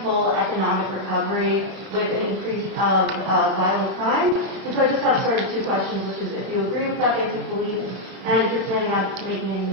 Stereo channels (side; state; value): left; late; 31 ms